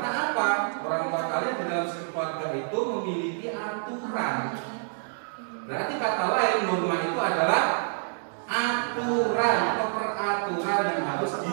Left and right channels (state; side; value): silent; left; 60 dB below the other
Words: apa? Orang tua kalian di dalam keluarga itu memiliki aturan. Berarti kata lain, norma itu adalah aturan atau peraturan yang harus